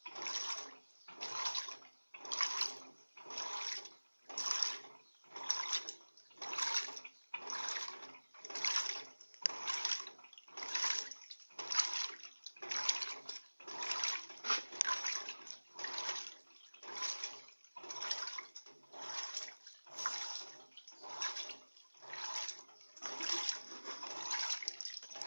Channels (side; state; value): both; inverted; correlation -1.00